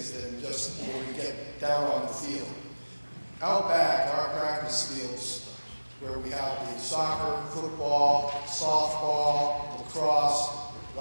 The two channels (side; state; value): both; inverted; correlation -1.00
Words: than just when we get down on the field. Out back, our practice fields, where we have the soccer, football, softball, lacrosse, a